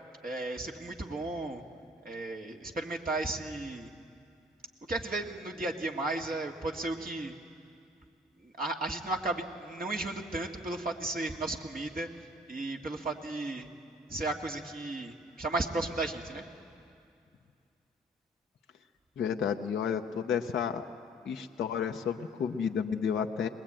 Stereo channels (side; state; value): both; normal; correlation 0.53